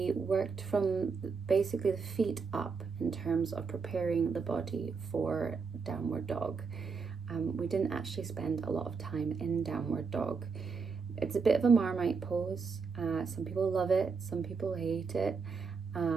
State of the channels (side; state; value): left; quieter; 5.1 dB